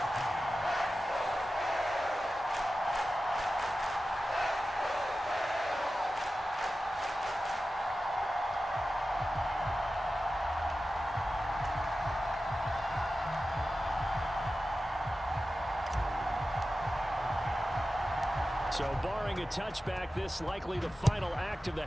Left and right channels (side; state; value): both; normal; correlation 0.94